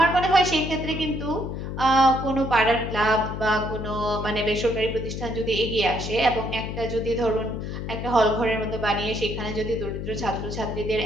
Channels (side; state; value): left; noise; hum, 6 dB below the sound